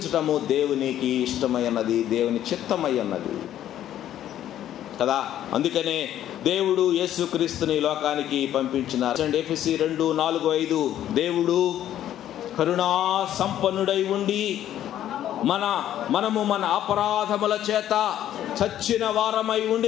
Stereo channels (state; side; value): quieter; right; 11.6 dB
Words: దేవునికి ఇష్టమై ఉన్నది, దేవుని చిత్తమై ఉన్నది కదా. అందుకనే దేవుడు యేసుక్రీస్తుని లోకానికి పంపించినారు. ఎఫెసీ 2:4-5. దేవుడు కరుణా సంపన్నుడై ఉండి మనము మన అపరాధముల చేత చచ్చిన వారమై